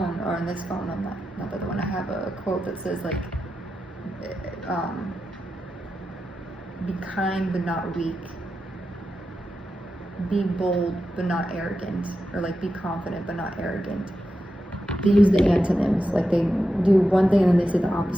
or on this phone, on that, not the other one, I have a quote that says like, be kind but not weak. Be bold but not arrogant. Or like be confident but not arrogant. They use the antonyms, like they do one thing and then they say the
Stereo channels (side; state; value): both; normal; correlation 0.89